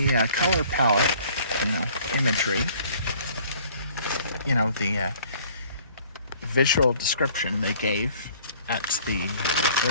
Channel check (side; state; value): both; inverted; correlation -0.55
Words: color palette, imagery, the visual description they gave at the